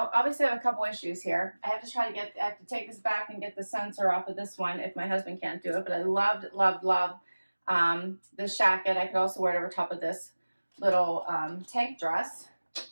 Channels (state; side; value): inverted; both; correlation -1.00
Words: I have a couple issues here. I have to take this back and get the sensor off of this one if my husband can't do it, but I loved, loved, loved this jacket. I could also wear it over top of this little tank dress.